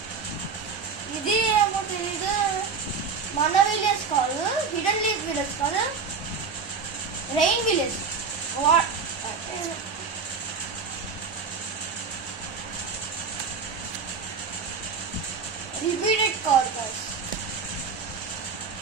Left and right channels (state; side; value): quieter; left; 5.3 dB